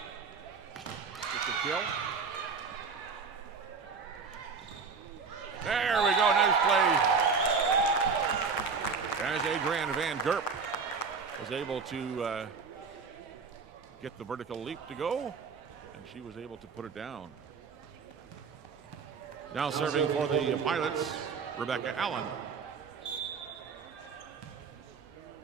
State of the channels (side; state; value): left; quieter; 5.3 dB